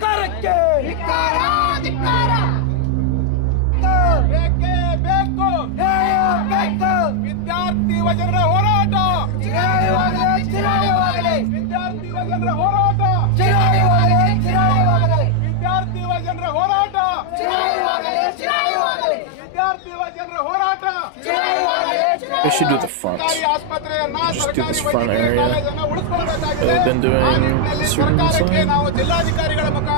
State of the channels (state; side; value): different; both; correlation 0.00